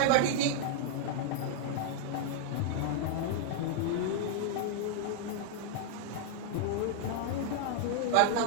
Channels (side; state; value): both; different; correlation -0.01